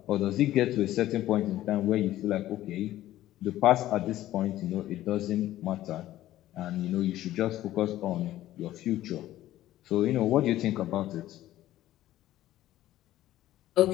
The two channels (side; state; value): right; quieter; 14.3 dB